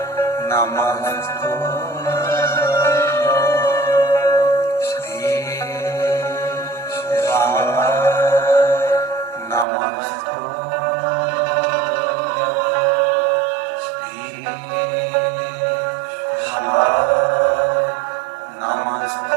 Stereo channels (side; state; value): left; drops out; at 9.7 s